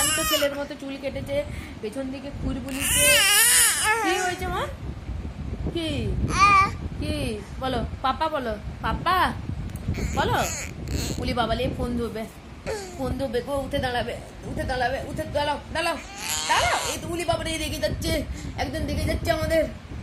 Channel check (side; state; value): both; identical; correlation 1.00